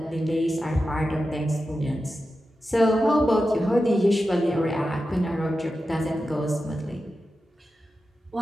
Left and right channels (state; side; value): normal; both; correlation 0.91